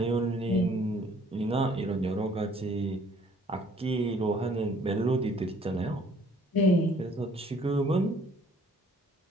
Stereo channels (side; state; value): both; normal; correlation 0.59